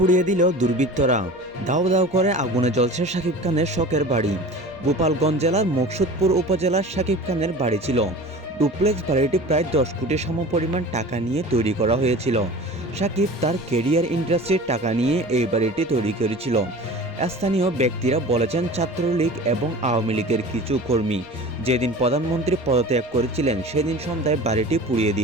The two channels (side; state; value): both; normal; correlation 0.38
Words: দিল দুর্বৃত্তরা। দাউ দাউ করে আগুনে জ্বলছে সাকিব খানের শখের বাড়ি। গোপালগঞ্জ জেলার মকসুদপুর উপজেলার সাকিব খানের বাড়ি ছিল। ডুপ্লেক্স বাড়িটি প্রায় 10 কোটি সমপরিমাণ টাকা নিয়ে তৈরি করা হয়েছিল। সাকিব তার কেরিয়ার ইন্ডাস্ট্রির টাকা নিয়ে এই বাড়িটি তৈরি করেছিল। স্থানীয় ব্যক্তিরা বলেছেন, ছাত্রলীগ এবং আওয়ামী লীগের কিছু কর্মী যেদিন প্রধানমন্ত্রী পদত্যাগ করেছিলেন সেদিন সন্ধ্যায় বাড়িটি পুড়িয়ে